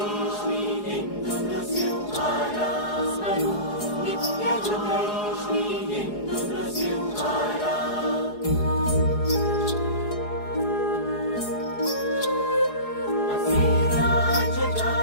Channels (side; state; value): right; late; 4.8 ms